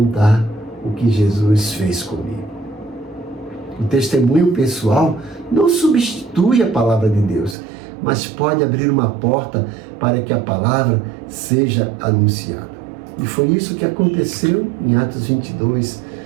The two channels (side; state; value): left; drops out; at 7.6 s